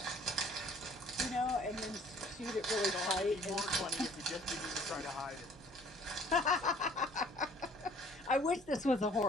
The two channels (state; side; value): normal; both; correlation 0.55